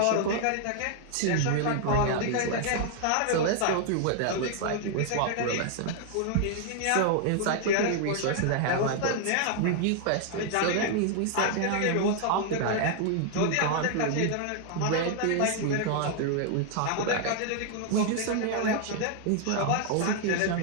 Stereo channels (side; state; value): both; different; correlation 0.00